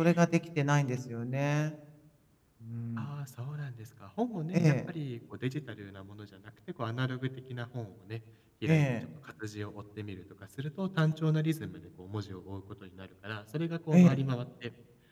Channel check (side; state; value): both; identical; correlation 1.00